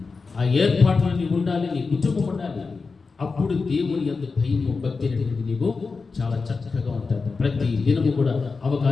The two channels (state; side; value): quieter; right; 4.5 dB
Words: ఆ ఏర్పాట్లు నీవు ఉండాలి, నీ కుటుంబం ఉండాలి. అప్పుడు దేవుని యొక్క భయము, భక్తి అనేటువంటి నీవు చాలా చక్కగా ఉంటావు. ప్రతి దినము కూడా